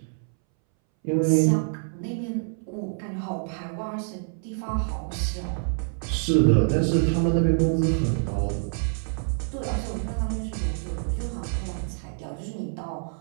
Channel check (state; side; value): silent; left; 61 dB below the other